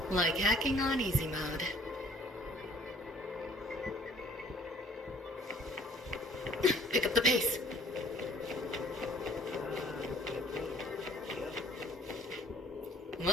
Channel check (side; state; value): both; normal; correlation 0.56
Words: Like hacking on easy mode. Pick up the pace.